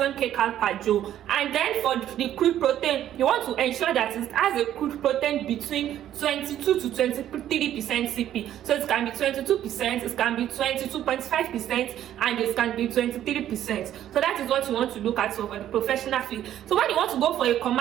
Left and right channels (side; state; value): left; quieter; 11.6 dB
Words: kcal per joule. And then for the crude protein, you want to ensure that it has a crude protein between 22 to 23% CP. So it can be 22%, it can be 22.5%, and it can be 23%. So that is what you want to look at for the professional feed. So when you want to go for a